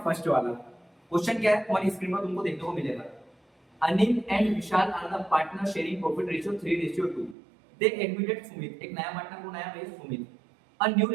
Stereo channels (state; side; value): drops out; left; at 7.4 s